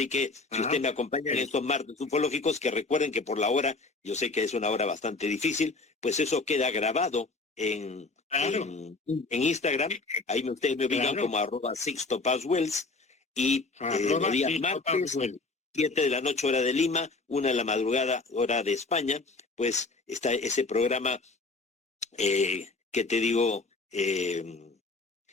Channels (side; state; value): right; quieter; 3.6 dB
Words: que si usted me acompaña en estos martes ufológicos, que recuerden que por la hora, yo sé que es una hora bastante difícil, pues eso queda grabado en Instagram. Ahí ustedes me ubican como @SixtoPazWells y los días martes, 7 de la noche hora de Lima, 1 de la madrugada hora de España, pues está ese programa que te digo, que